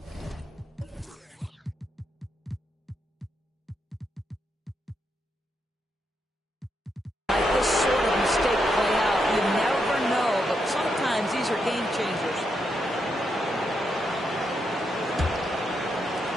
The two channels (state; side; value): normal; both; correlation 0.82